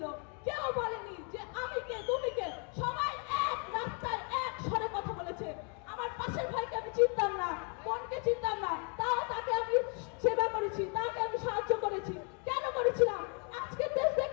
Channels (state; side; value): quieter; right; 38.4 dB